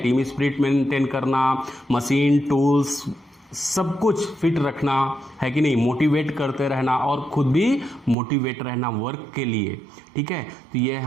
स्पिरिट मेंटेन करना, मशीन टूल्स सब कुछ फिट रखना, है कि नहीं, मोटिवेट करते रहना और खुद भी मोटिवेट रहना वर्क के लिए। ठीक है, तो ये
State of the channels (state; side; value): drops out; left; at 8.2 s